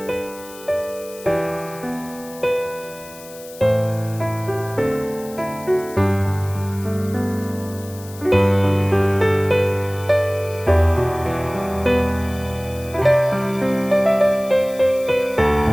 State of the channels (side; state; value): left; noise; hiss, 19 dB below the sound